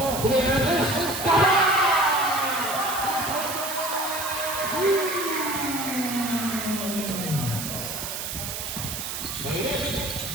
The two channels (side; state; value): right; noise; hiss, 5 dB below the sound